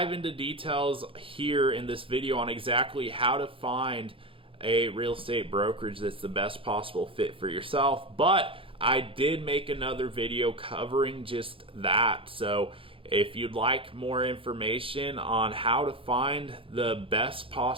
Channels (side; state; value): left; late; 0.26 ms